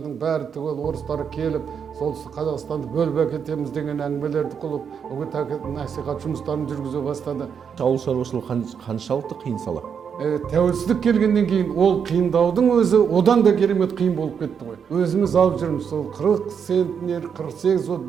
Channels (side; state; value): left; quieter; 7.1 dB